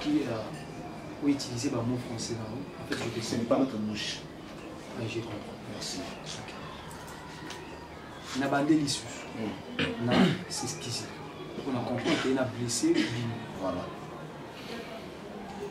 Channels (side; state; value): both; identical; correlation 1.00